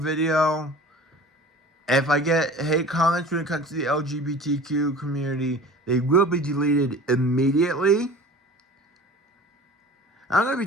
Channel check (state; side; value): normal; both; correlation 0.41